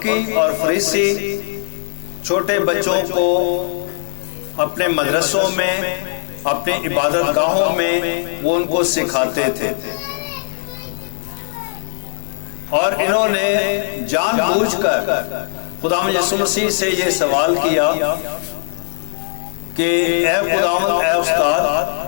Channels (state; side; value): silent; right; digital silence